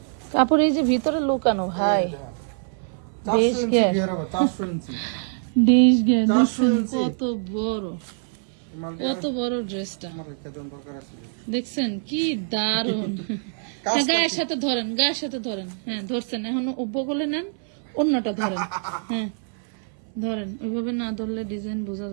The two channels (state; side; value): silent; left; 57 dB below the other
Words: কাপড় এই যে ভিতরে লুকানো ভাই, 400 ইঞ্চি ঘের হবে, 400 ইঞ্চি দেশ ঘের দেখছেন কত বড়, কত বড় ড্রেসটা আমার রেখে দেন দরকার আছে। দেখছেন কি দারুন। গায়ের সাথে ধরেন, গায়ের সাথে ধরেন, হ্যাঁ ধরছেন, এখন বগলে নেন, অন্যটা ধরেন, হ্যাঁ ধরেন, ওইভাবে না ধরলে ডিজাইন বোঝা